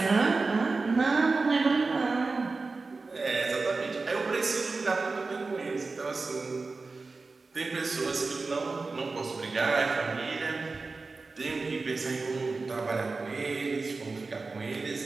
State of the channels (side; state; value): left; quieter; 3.9 dB